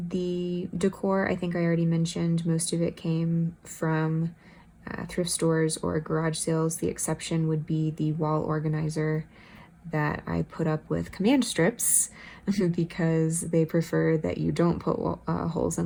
decor, I think I already mentioned, most of it came from thrift stores or garage sales. The exception would be the wall organizer that I put up with command strips because they prefer that you don't put holes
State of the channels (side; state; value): both; identical; correlation 1.00